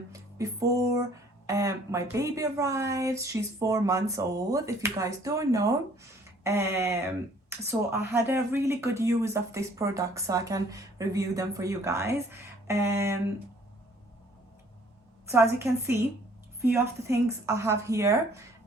before my baby arrives. She's 4 months old, if you guys don't know. So I had a really good use of this product, so I can review them for you guys. So as you can see, few of the things I have here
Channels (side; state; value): both; normal; correlation 0.58